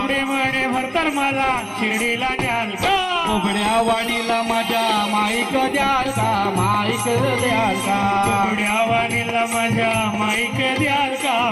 म्हणे भरतर मला शिर्डीला न्याल का? बोबड्या वाणीला माझ्या माईक द्याल का? माईक द्याल का? बोबड्या वाणीला माझ्या माईक द्याल का?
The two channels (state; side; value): identical; both; correlation 1.00